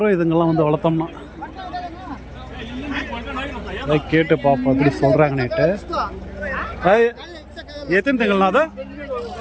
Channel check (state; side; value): identical; both; correlation 1.00